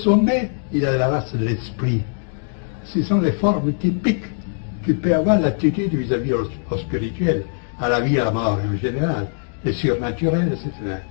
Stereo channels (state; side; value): silent; right; digital silence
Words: il y a la race de l'esprit. Ce sont les formes typiques qui peuvent avoir l'attitude vis-à-vis au spirituel, à la vie et à la mort en général, les surnaturels, etc.